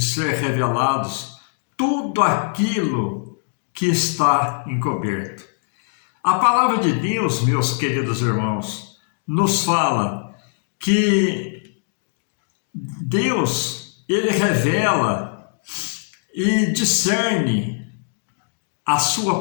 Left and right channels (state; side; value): silent; right; digital silence